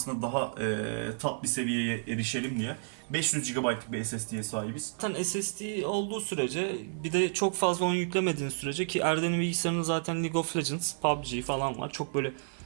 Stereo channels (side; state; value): left; silent; 57 dB below the other